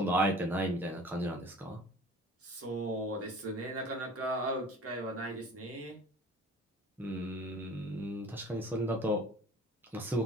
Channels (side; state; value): both; normal; correlation 0.45